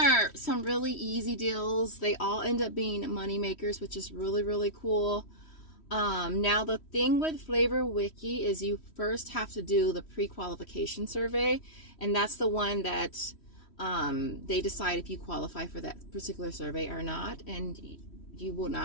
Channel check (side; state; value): right; late; 3.1 ms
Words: some really easy deals. They all end up being money makers, which is really, really cool. Now, the thing with Flavor Wiki is you first have to do the pre-qualification survey. And that's the one that they decide if you qualify for that particular survey or not. And you will